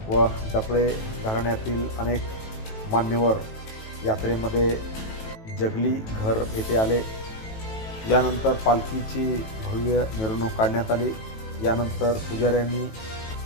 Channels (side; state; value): right; late; 18 ms